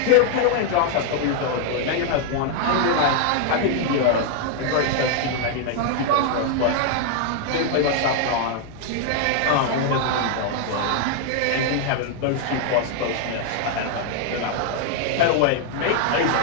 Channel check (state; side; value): different; both; correlation 0.00